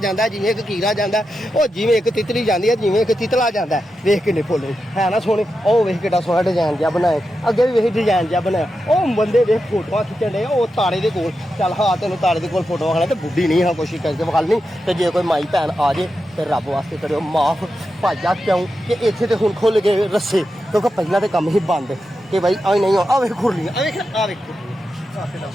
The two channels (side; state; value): both; normal; correlation 0.89